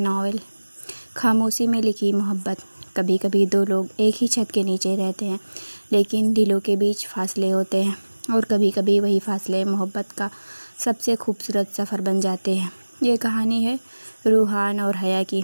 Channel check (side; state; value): both; inverted; correlation -1.00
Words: खामोशी में लिखी मोहब्बत। कभी कभी दो लोग एक ही छत के नीचे रहते हैं, लेकिन दिलों के बीच फासले होते हैं, और कभी कभी वही फासले मोहब्बत का सबसे खूबसूरत सफ़र बन जाते हैं। ये कहानी है रूहान और हया की,